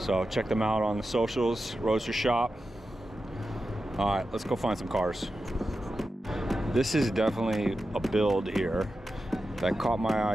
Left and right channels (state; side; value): normal; both; correlation 0.91